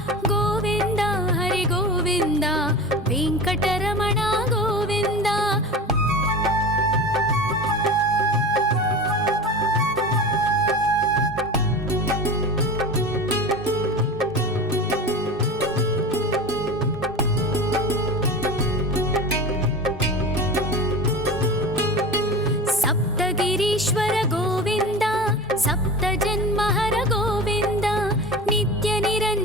गोविन्द हरि गोविन्द वेङ्कटरमण गोविन्द सप्तगिरीश्वर गोविन्द सप्तजन्महर गोविन्द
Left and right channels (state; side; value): normal; both; correlation 0.31